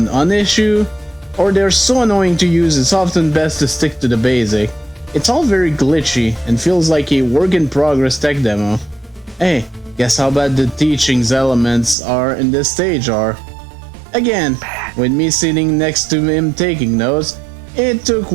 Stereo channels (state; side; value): drops out; left; at 12.0 s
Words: non-issue, or they're so annoying to use it's often best to stick to the basic. It's all very glitchy and feels like a work-in-progress tech demo. Hey, Guess how bad the teachings elements are in this stage are. Again, with me sitting next to him taking notes, it took